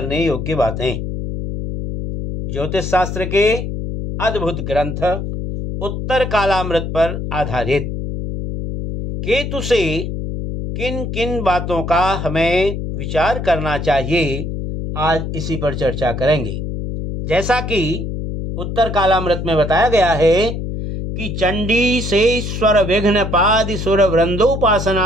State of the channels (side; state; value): left; noise; hum, 5 dB below the sound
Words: योग्य बातें। ज्योतिष शास्त्र के अद्भुत ग्रंथ उत्तर कालामृत पर आधारित केतु से किन किन बातों का हमें विचार करना चाहिए, आज इसी पर चर्चा करेंगे। जैसा कि उत्तर कालामृत में बताया गया है कि चंडी से स्वर विघ्न पादि सुर